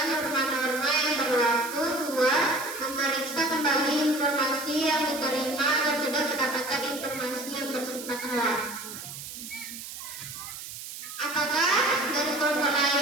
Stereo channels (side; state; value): right; noise; hiss, 10 dB below the sound